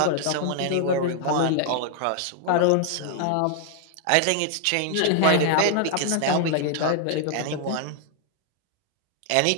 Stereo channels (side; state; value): both; different; correlation 0.00